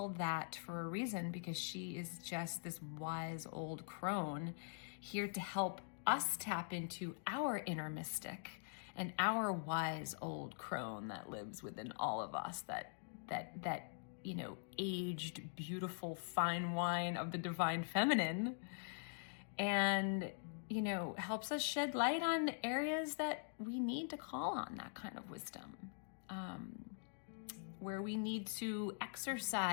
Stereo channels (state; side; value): silent; right; digital silence